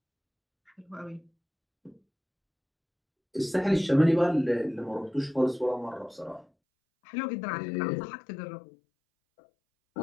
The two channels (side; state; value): right; drops out; at 6.5 s